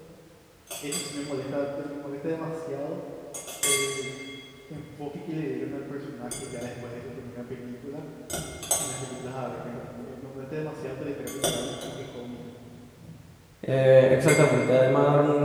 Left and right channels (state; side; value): identical; both; correlation 1.00